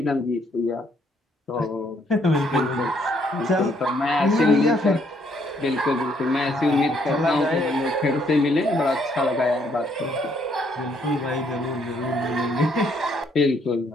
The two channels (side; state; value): both; normal; correlation 0.69